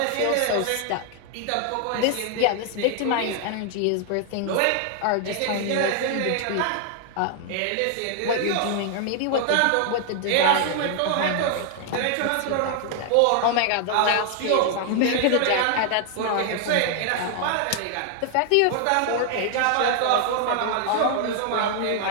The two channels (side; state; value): both; different; correlation 0.00